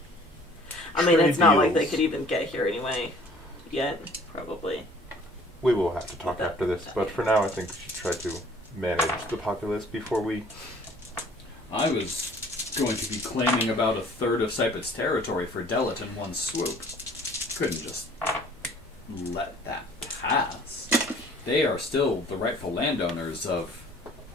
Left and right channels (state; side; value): normal; both; correlation 0.54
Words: I mean, it's not like they deals. could even get here anyway. Yet, probably. We will have to talk after this, but for now I think we should try to manage the populace before we... I was going to be claiming about 1/3 of Sypet's territory for Delit in one swoop. Couldn't just let that pass. They are still the rightful landowners of